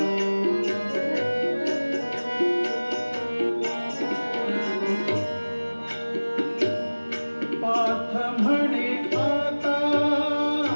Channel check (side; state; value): both; inverted; correlation -1.00